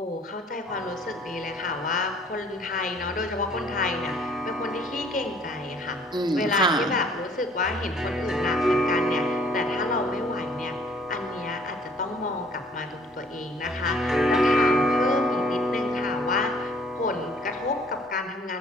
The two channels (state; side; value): normal; both; correlation 0.58